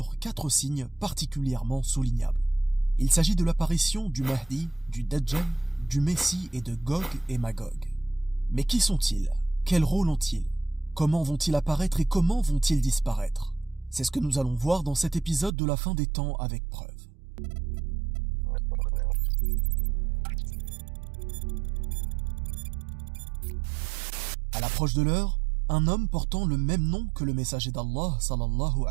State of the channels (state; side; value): drops out; left; at 15.5 s